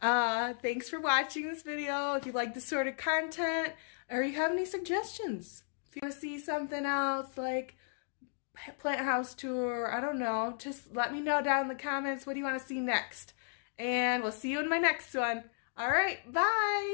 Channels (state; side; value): silent; right; digital silence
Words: Thanks for watching this video. If you like this sort of content or you have any suggestions, if you want to see something else like plant house tour, I don't know, just let me know down in the comments. What do you want to see next? And we'll see you in my next one. All right,